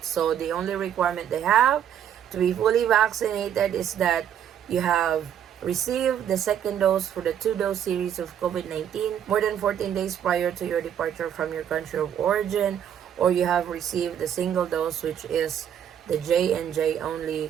So the only requirement they have to be fully vaccinated is that you have received the second dose for the 2-dose series of COVID-19 more than 14 days prior to your departure from your country of origin, or you have received the single dose, which is the J&J only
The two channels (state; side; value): quieter; left; 9.5 dB